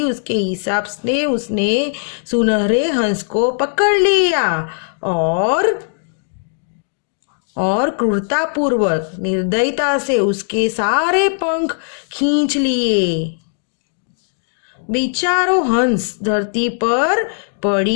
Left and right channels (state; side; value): silent; right; digital silence